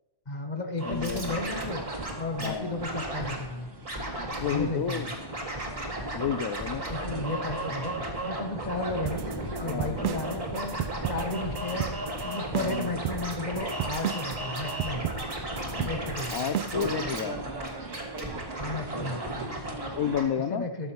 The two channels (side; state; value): right; late; 1.1 ms